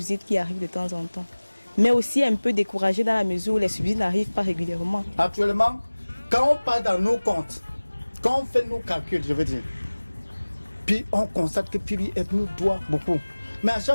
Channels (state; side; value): inverted; both; correlation -1.00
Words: qui arrivent de temps en temps. Mais aussi un peu découragé dans la mesure où les subsides n'arrivent pas régulièrement. Actuellement, quand on part dans nos comptes, quand on fait nos calculs, je veux dire, puis on constate que PBF nous doit beaucoup. Mais à